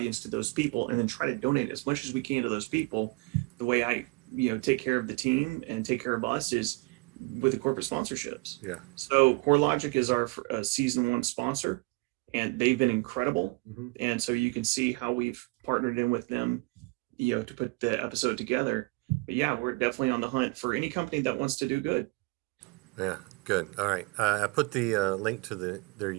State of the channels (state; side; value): quieter; left; 26.8 dB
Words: to those people, and then try to donate as much as we can to those people. The way I, you know, take care of the team and take care of us is with the corporate sponsorships. Yeah. So CoreLogic is our season 1 sponsor, and they've been incredible. Mm-hmm. And so you can see how we've partnered in with them, to put the episode together. But yeah, we're definitely on the hunt for any company that wants to do good. Yeah, good. All right. I put the link to their